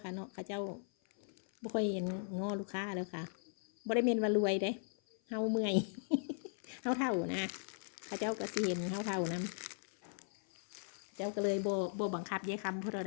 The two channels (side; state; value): right; silent; 52 dB below the other